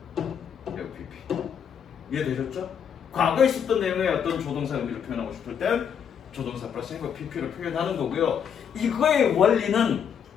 FPP. 이해되셨죠? 과거에 있었던 내용의 어떤 조동사 의미를 표현하고 싶을 땐 조동사 플러스 have pp를 표현하는 거고요. 이거의 원리는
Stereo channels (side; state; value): right; quieter; 7.8 dB